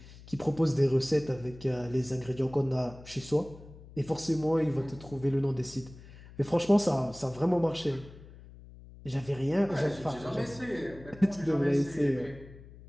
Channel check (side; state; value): left; noise; hum, 19 dB below the sound